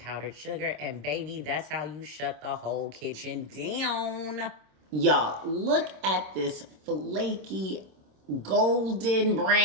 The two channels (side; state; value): left; late; 26 ms